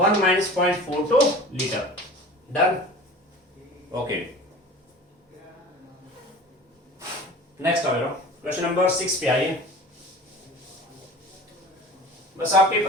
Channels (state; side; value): normal; both; correlation 0.40